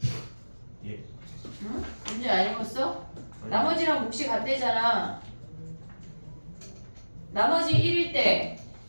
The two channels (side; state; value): both; inverted; correlation -1.00